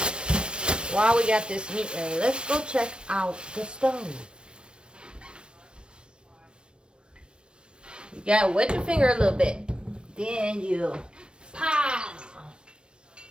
while we got this meat ready, let's go check out the stove. You gotta wet your finger a little bit. Then you pow.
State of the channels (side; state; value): left; late; 0.055 ms